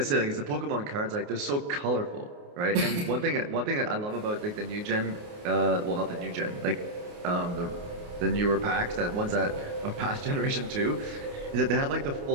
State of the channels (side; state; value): left; late; 28 ms